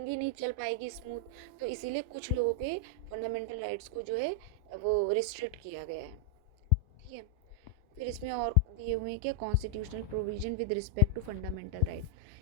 ही नहीं चल पाएगी स्मूथ। तो इसीलिए कुछ लोगों के फंडामेंटल राइट्स को जो है वो रिस्ट्रिक्ट किया गया है। ठीक है, फिर इसमें और दिए हुए हैं क्या, constitutional provision with respect to fundamental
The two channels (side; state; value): both; normal; correlation -0.02